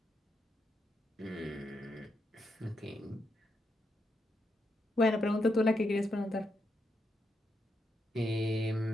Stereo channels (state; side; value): normal; both; correlation 0.82